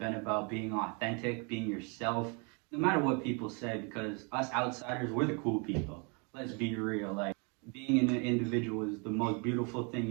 about being authentic, being yourself, no matter what people say, because us outsiders, we're the cool people. Let's be real. Like being an individual is the most beautiful thing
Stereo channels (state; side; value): quieter; left; 33.8 dB